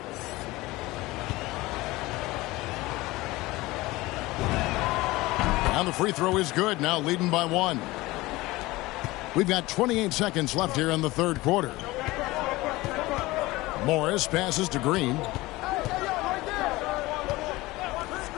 And the free throw is good, now leading by 1. We've got 28 seconds left here in the third quarter. Morris passes to Green.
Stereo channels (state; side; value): quieter; right; 20.0 dB